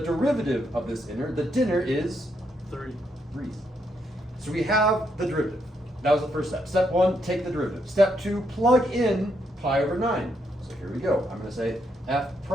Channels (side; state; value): both; normal; correlation 0.77